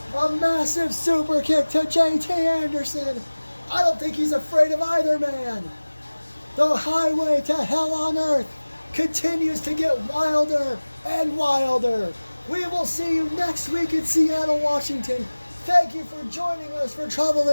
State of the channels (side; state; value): both; inverted; correlation -1.00